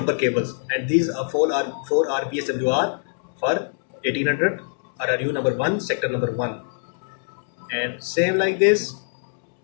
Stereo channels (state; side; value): silent; right; digital silence